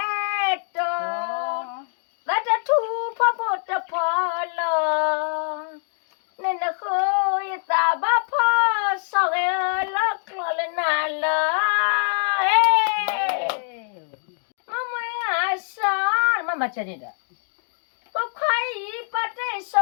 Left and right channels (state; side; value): silent; right; 63 dB below the other